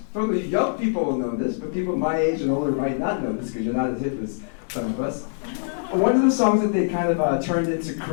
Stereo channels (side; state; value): right; silent; 62 dB below the other